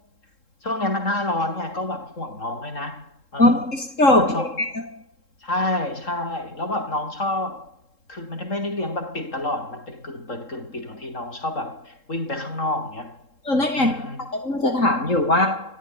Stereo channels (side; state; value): right; late; 3.7 ms